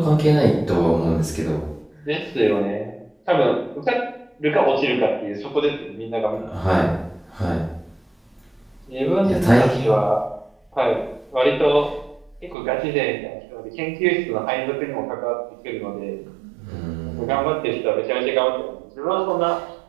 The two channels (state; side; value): drops out; left; at 12.6 s